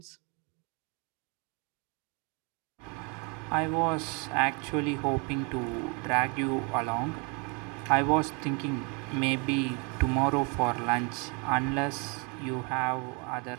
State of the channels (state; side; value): quieter; left; 32.9 dB